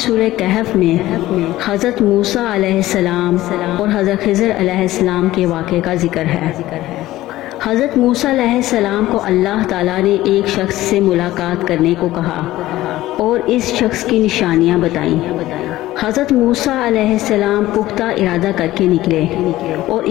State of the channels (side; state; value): right; quieter; 16.0 dB